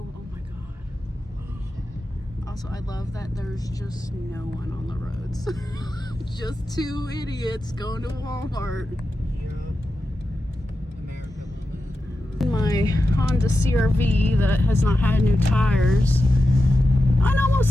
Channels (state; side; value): normal; both; correlation 0.91